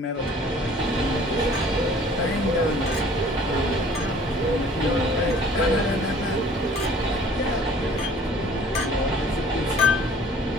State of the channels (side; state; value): both; normal; correlation 0.52